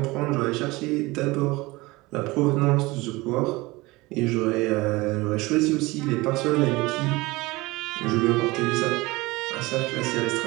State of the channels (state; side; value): quieter; left; 21.8 dB